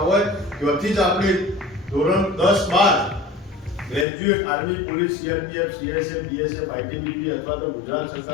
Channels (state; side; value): drops out; right; at 4.0 s